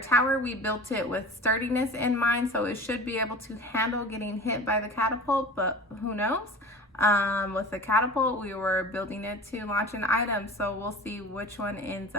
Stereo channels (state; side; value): normal; both; correlation 0.38